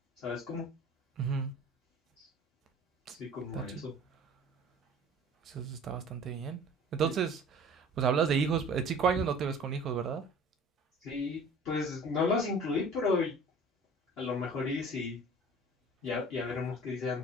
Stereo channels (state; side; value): normal; both; correlation 0.45